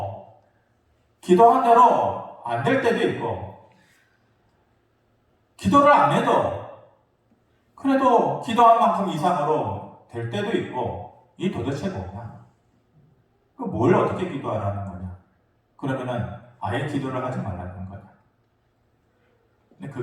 기도한 대로 안 될 때도 있고, 기도를 안 해도 그래도 기도한 만큼 이상으로 될 때도 있고, 이 도대체 뭐냐? 뭘 어떻게 기도하라는 거냐? 그러면은 아예 기도를 하지 말라는 거냐? 근데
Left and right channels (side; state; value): both; identical; correlation 1.00